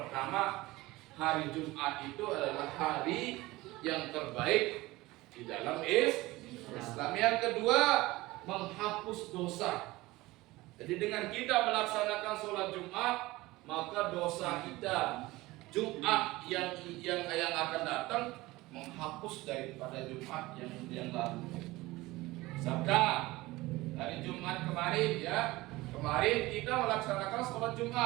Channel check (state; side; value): quieter; left; 19.7 dB